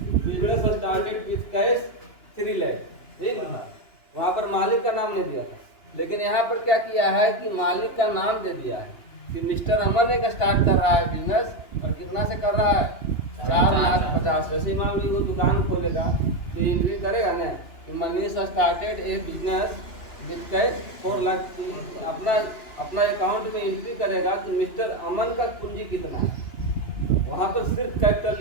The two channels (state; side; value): late; right; 2.9 ms